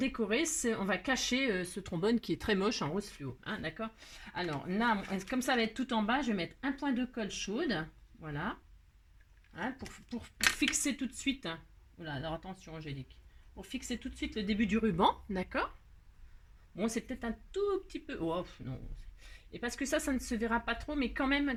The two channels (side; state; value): both; identical; correlation 1.00